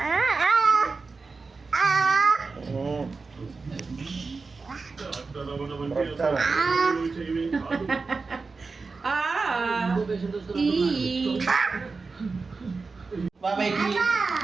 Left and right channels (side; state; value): left; quieter; 4.3 dB